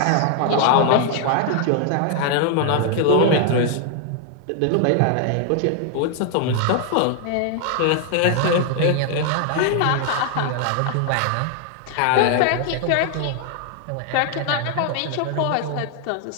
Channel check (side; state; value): both; different; correlation 0.00